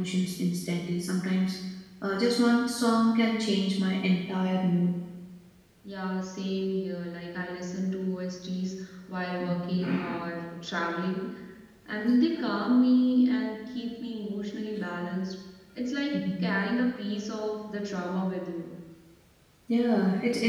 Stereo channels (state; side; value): identical; both; correlation 1.00